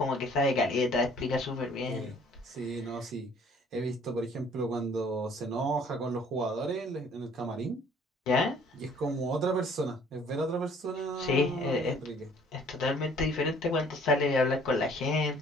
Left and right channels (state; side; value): normal; both; correlation 0.57